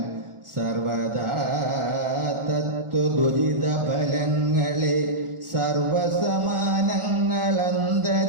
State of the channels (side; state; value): left; late; 1.4 ms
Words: സർവദാ തത്വദുരിത ഫലങ്ങളെ